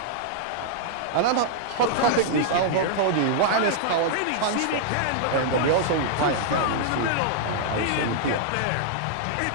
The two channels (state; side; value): different; both; correlation -0.01